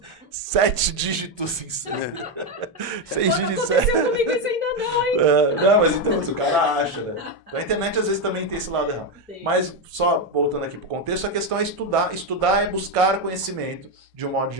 7 dígitos em 6 dígitos. Comigo isso ainda não, hein? Não, mas então o cara acha, né? Então, a internet às vezes também tem esse lado errado. Sim. Mas só voltando aqui pro contexto, a questão é estudar. Estudar é buscar conhecimento de um modo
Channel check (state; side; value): normal; both; correlation 0.07